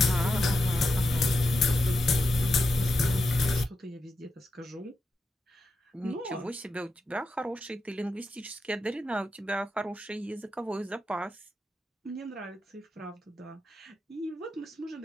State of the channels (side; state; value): both; normal; correlation 0.87